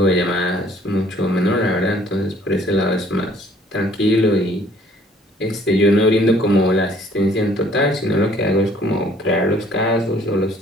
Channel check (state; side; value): normal; both; correlation 0.59